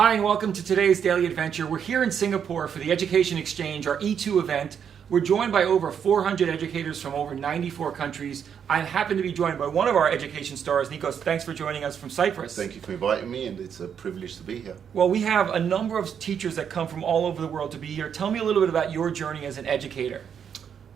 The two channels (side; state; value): left; quieter; 7.9 dB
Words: and welcome to today's Daily Adventure. We're here in Singapore for the Education Exchange, our E2 event. We're joined by over 400 educators from over 94 countries. I happen to be joined by one of our education stars, Nicos. Thanks for joining us from Cyprus. Thank you for inviting me, and it's a privilege to be here. Well, we have a number of teachers that come from all over the world to be here. Tell me a little bit about your journey as an educator.